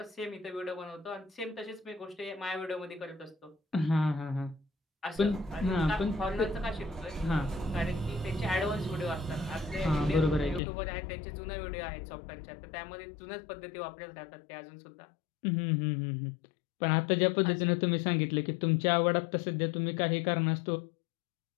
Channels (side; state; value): right; drops out; at 10.6 s